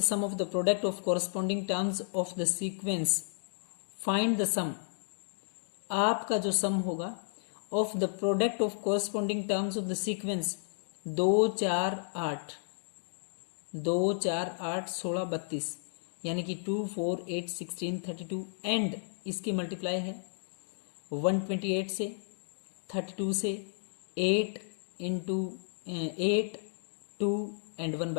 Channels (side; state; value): right; silent; digital silence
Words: sum of the product of corresponding terms of the sequence. Find the sum, आपका जो सम होगा of the product of corresponding terms of the sequence 2 4 8 2 4 8 16 32, यानी कि 2 4 8 16 32 एंड इसकी मल्टीप्लाई है 128 से 32 से 8 इंटू 8 2 एंड